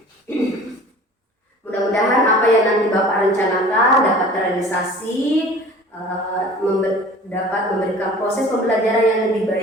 Mudah-mudahan apa yang nanti Bapak rencanakan dapat terrealisasi, dapat memberikan proses pembelajaran yang lebih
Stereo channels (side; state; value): both; normal; correlation 0.44